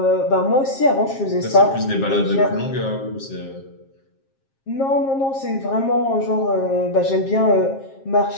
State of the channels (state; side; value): late; right; 7.4 ms